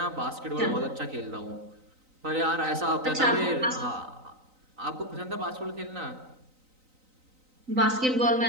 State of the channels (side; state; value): left; late; 3.9 ms